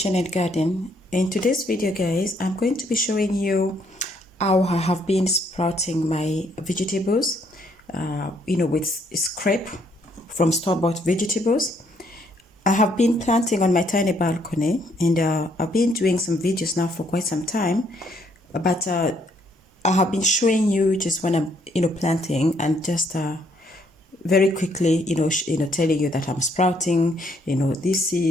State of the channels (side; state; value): both; normal; correlation 0.69